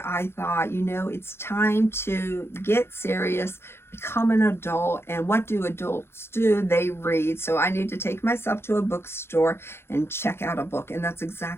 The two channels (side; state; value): right; late; 0.12 ms